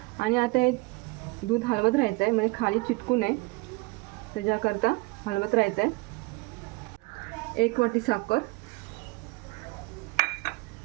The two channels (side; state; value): left; quieter; 25.3 dB